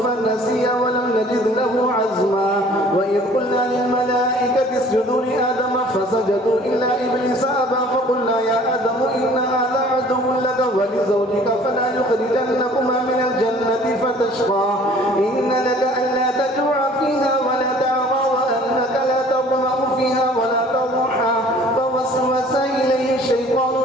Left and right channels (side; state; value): both; normal; correlation 0.52